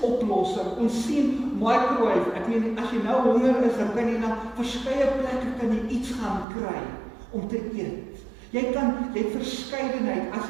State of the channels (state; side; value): drops out; left; at 6.5 s